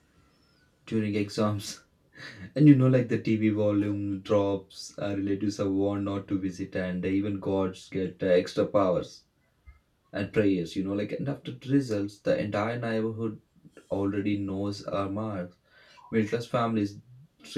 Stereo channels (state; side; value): identical; both; correlation 1.00